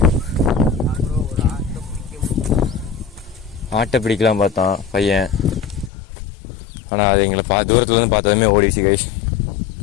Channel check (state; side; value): drops out; right; at 5.9 s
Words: ஆட்டை பிடிக்கலாம் பார்த்தான் பையன், ஆனால் அது எங்களை தூரத்துலேருந்து பார்த்ததுமே ஓடிச்சு கைஸ்.